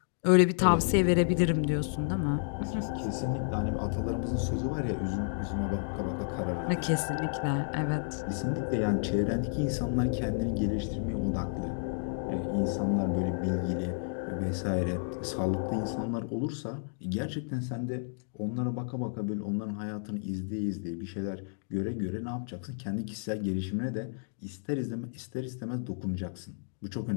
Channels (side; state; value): right; silent; digital silence